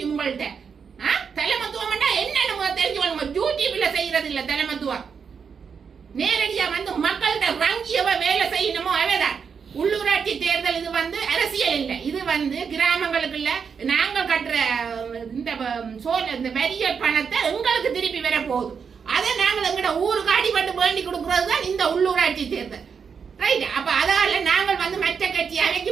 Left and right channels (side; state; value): left; quieter; 6.3 dB